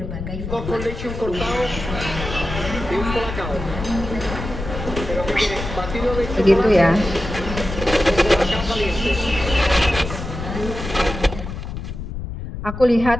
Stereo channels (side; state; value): left; noise; rumble, 7 dB below the sound